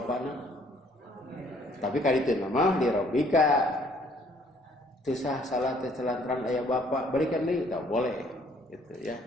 Tapi kali itu nama di Rabbika. Tusah salat telantaran ayah bapak berikan deui tak boleh gitu ya.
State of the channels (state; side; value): normal; both; correlation 0.61